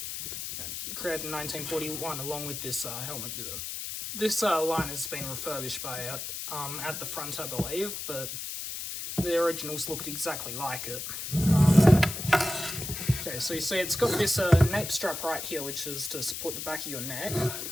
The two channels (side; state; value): left; noise; hiss, 6 dB below the sound